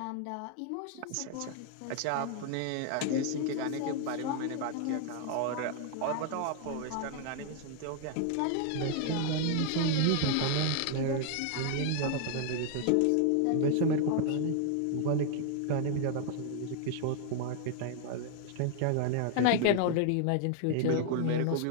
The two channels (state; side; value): different; both; correlation 0.00